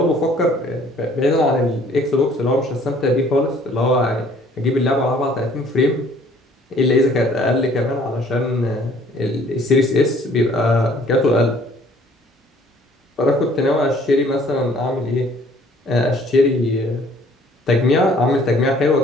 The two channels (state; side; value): normal; both; correlation 0.57